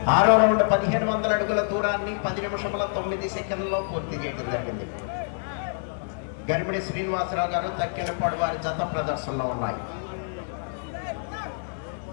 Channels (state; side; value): silent; right; digital silence